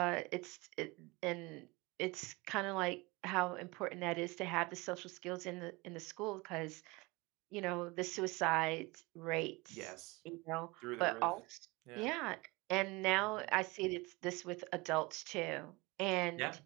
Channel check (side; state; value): left; quieter; 24.4 dB